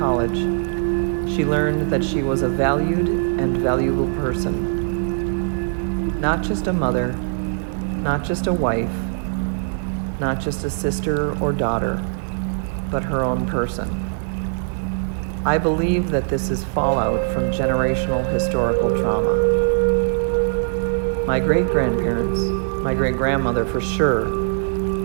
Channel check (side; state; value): left; silent; 60 dB below the other